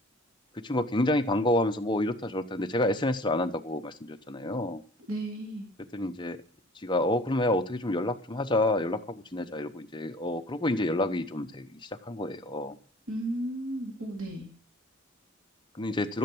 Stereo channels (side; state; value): both; normal; correlation 0.50